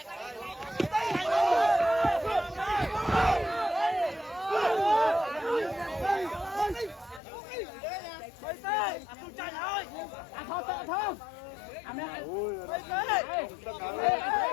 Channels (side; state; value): right; drops out; at 7.2 s